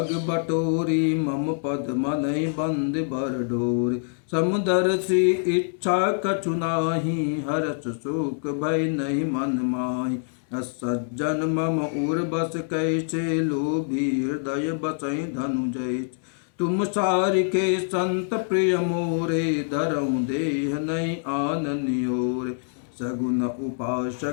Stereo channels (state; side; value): silent; right; digital silence